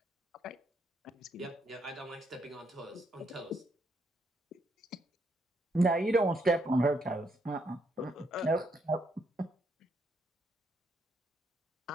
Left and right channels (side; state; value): both; normal; correlation 0.75